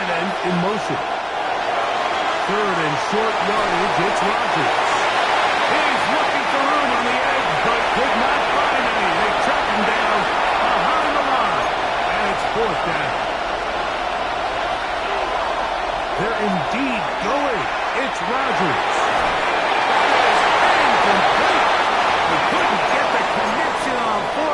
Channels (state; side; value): identical; both; correlation 1.00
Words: end in motion. Third and short yardage, it's Rodgers. He's looking for room on the edge, but could not find any. They track him down behind the line, and it's fourth down. They're indeed going. It's Rodgers. That is incomplete. They couldn't get the connection on